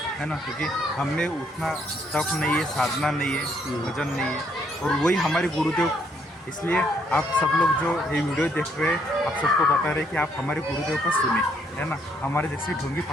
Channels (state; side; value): normal; both; correlation 0.70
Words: है ना, क्योंकि हमने उतना तप नहीं है, साधना नहीं है, भजन नहीं है, और वही हमारे गुरुदेव। इसलिए आप सब लोग जो ये वीडियो देख रहे हैं, आप सबको बता रहे हैं कि आप हमारे गुरुदेव को सुने, है ना, हमारे जैसे ढोंगी